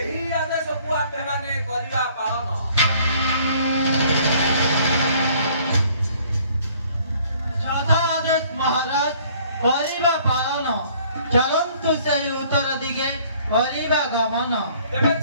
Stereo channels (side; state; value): both; inverted; correlation -0.58